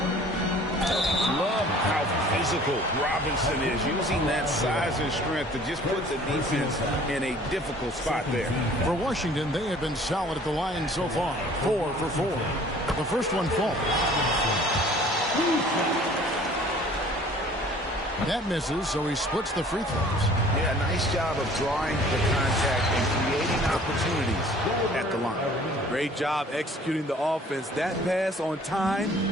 Love how physical Robinson is, using that size and strength to just put the defense in a difficult spot there. For Washington, they have been solid at the line so far. 4 for 4. The first one falls. That misses, so he splits the free throws. Yeah, nice job of drawing the contact and creating opportunities at the line. Great job executing the offense. That pass on time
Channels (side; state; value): both; normal; correlation 0.52